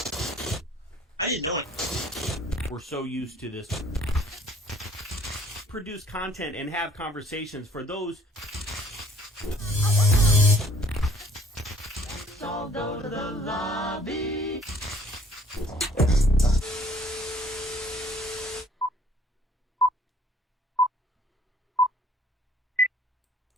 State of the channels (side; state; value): both; normal; correlation 0.57